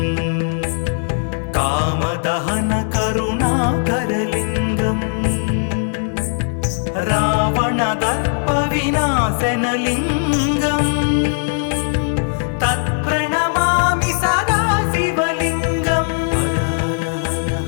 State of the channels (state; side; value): silent; right; digital silence